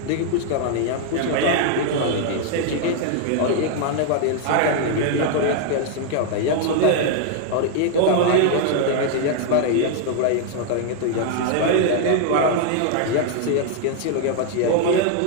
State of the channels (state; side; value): different; both; correlation 0.00